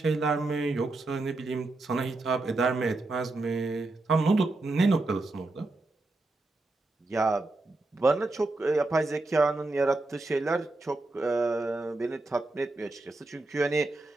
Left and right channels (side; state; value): left; quieter; 3.0 dB